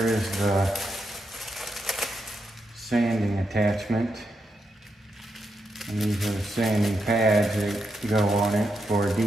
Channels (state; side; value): normal; both; correlation 0.83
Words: the sanding attachment. And these are the sanding pads that go on it for